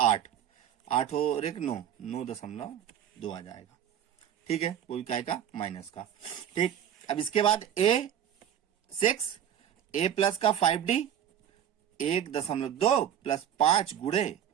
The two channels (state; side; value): quieter; left; 10.0 dB